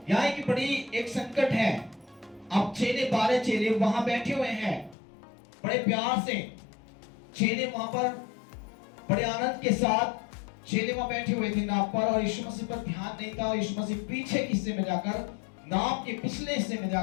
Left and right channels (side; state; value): right; drops out; at 5.0 s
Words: यहाँ की बड़ी एक संकट है। अब 12 चेले वहां बैठे हुए हैं, बड़े प्यार से चेले वहां पर बड़े आनंद के साथ चेले वहां बैठे हुए थे नाव पर, और यीशु मसीह पर ध्यान नहीं था। यीशु मसीह पीछे हिस्से में जाकर, नाव के पिछले हिस्से में